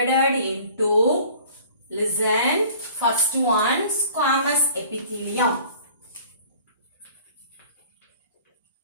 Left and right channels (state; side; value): inverted; both; correlation -0.49